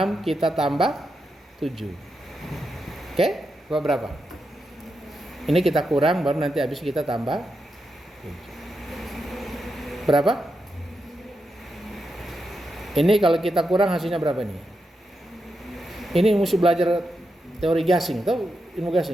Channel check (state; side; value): normal; both; correlation 0.86